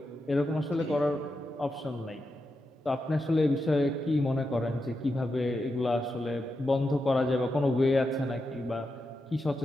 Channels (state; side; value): normal; both; correlation 0.87